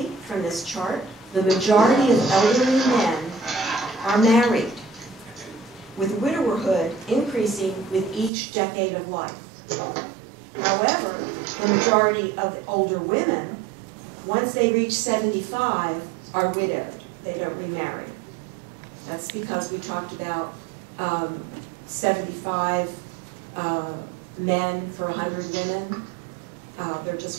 from this chart, the majority of elderly men are married, with widowerhood increasing with each decade of life. However, the majority of older women, once they reach 75, are widowed. They don't remarry. That's because we talked about 75 men for 100 women. There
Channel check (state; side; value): drops out; left; at 8.3 s